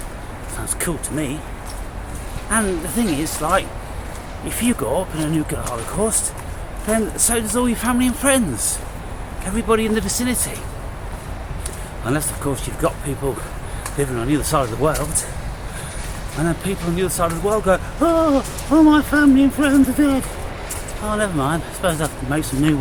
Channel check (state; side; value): identical; both; correlation 1.00